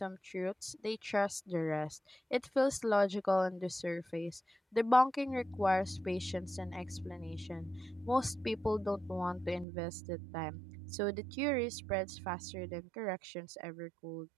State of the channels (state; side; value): drops out; left; at 9.7 s